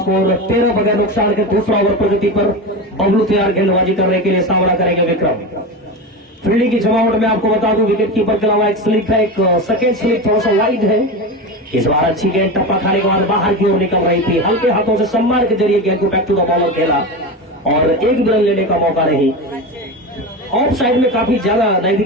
13 बगैर नुकसान के दूसरा ओवर प्रगति पर बबलू तैयार गेंदबाजी करने के लिए सामना करेंगे विक्रम। फील्डिंग की जमावट में आपको बता दूं विकेट कीपर के अलावा एक स्लिप है, एक सेकेंड स्लिप थोड़ा सा वाइड है। इस बार अच्छी गेंद टप्पा खाने के बाद बाहर की ओर निकल रही थी, हल्के हाथों से सम्मान के जरिए गेंद को बैक टू द बॉलर खेला और एक भी रन लेने का मौका नहीं। ऑफ साइड में काफी ज्यादा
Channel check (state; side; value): normal; both; correlation 0.23